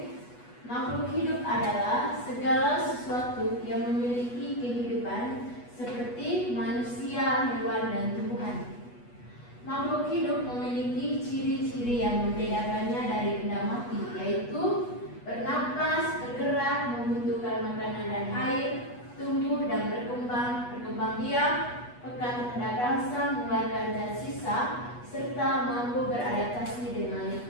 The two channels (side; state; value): right; late; 8.2 ms